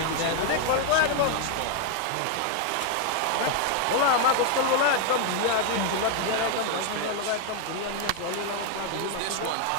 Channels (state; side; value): different; both; correlation 0.00